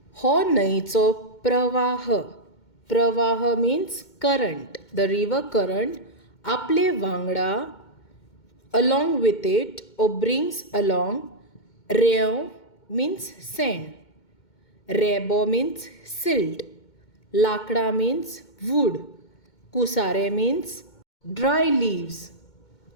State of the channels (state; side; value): late; right; 2.2 ms